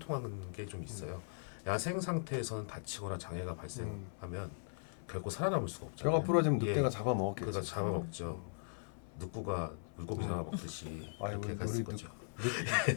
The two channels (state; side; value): silent; right; 52 dB below the other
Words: 게 좀 있어요. 야생 상태에서는 다치거나 장애가 발생하면 결코 살아남을 수가 없잖아요. 뼈가 부러지면 예, 늑대가 잡아먹었겠지. 그가 잡아먹죠. 늑구가 물고기 잡아먹듯이 아이고, 이렇게 갔을 우리 거죠.